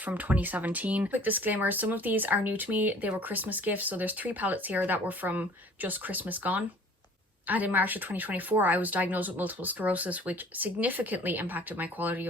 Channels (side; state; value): both; normal; correlation 0.50